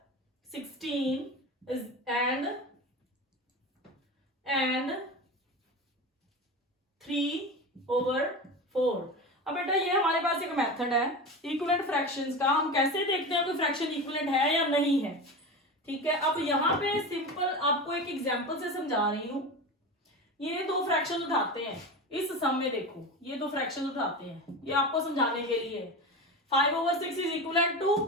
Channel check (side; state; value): both; normal; correlation 0.26